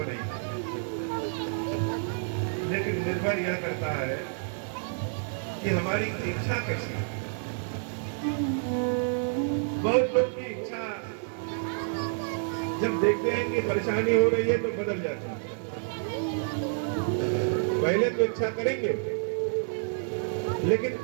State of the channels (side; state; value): left; silent; digital silence